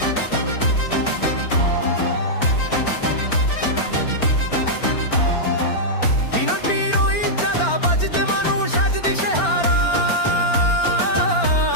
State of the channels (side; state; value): right; late; 4.4 ms